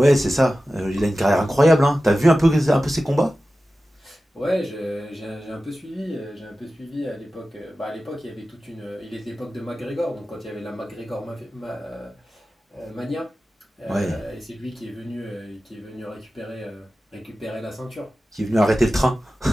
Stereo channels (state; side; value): normal; both; correlation 0.94